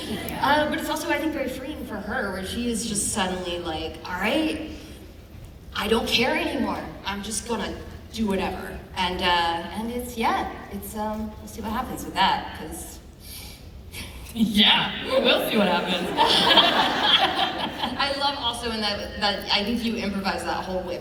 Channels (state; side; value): identical; both; correlation 1.00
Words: But it's also, I think, very freeing for her, where she is just suddenly like, all right, I don't care anymore. I'm just gonna do whatever. And it's, yeah, it's, we'll see what happens with that, because... Yeah, we'll see what happens. I love also in that I think you improvised that whole